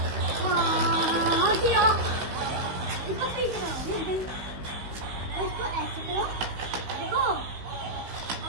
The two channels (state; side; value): late; left; 15 ms